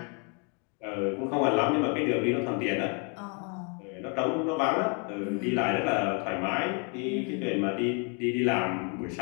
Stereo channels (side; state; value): right; quieter; 36.3 dB